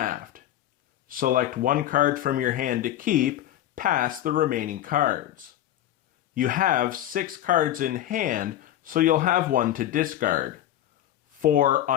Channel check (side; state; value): right; quieter; 12.6 dB